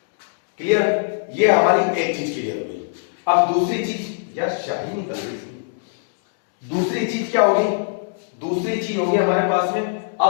Clear, ये हमारी एक चीज क्लियर हो गई। अब दूसरी चीज, यार शाही निकल गई इसकी। दूसरी चीज क्या होगी, दूसरी चीज होगी हमारे पास में,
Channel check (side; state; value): right; silent; digital silence